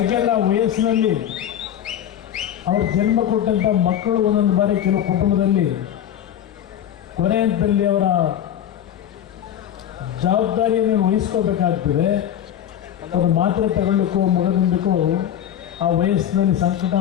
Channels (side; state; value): right; quieter; 10.3 dB